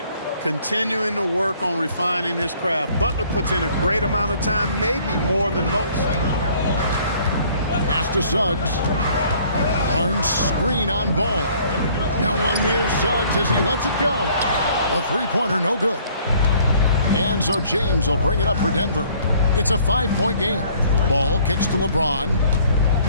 Continuing to work on refining his craft. Butler puts in a great amount of time, maybe more than most. Pass to Suggs. Barnes screen on Ball. No one near Suggs as he lets it go. A 3-pointer, no good. And so James will bring it up for Denver. It's a 5-point game. Ball kicks to LeBron.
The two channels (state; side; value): inverted; both; correlation -0.58